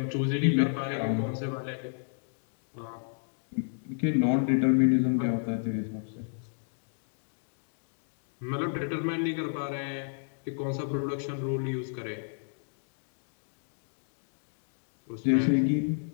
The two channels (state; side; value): silent; right; digital silence